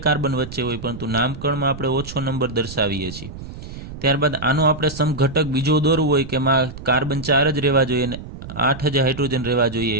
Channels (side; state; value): right; noise; rumble, 12 dB below the sound